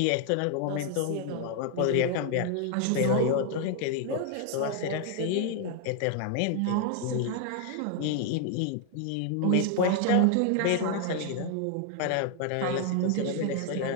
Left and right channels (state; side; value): different; both; correlation 0.00